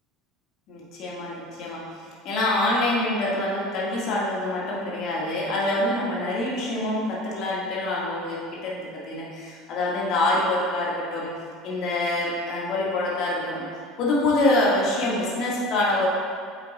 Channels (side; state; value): both; normal; correlation 0.39